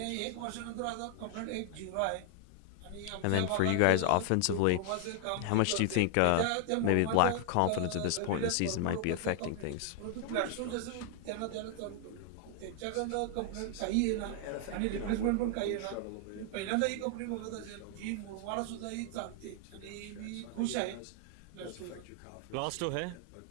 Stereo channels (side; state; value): both; different; correlation 0.00